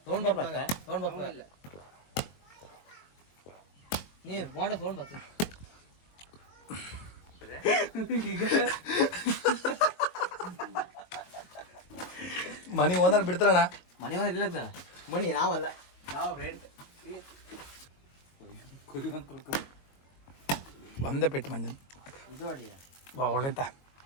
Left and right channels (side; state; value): right; late; 22 ms